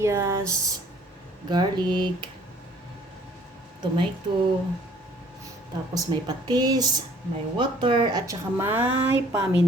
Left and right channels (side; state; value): both; normal; correlation 0.56